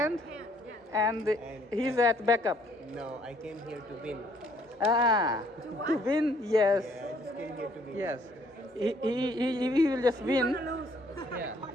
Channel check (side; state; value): both; normal; correlation 0.64